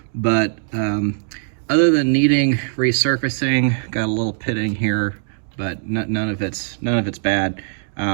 but other than needing resurfacing, got a little pitting here, but none of it's bad.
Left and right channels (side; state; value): left; silent; digital silence